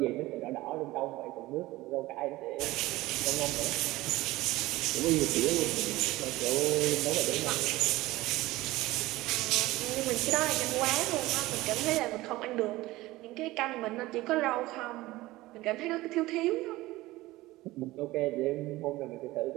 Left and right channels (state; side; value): quieter; left; 18.5 dB